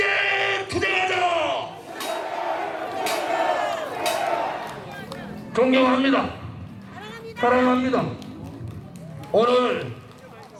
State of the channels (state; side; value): identical; both; correlation 1.00